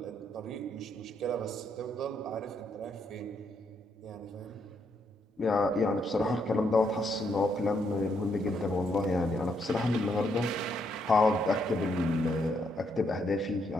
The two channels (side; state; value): both; normal; correlation 0.75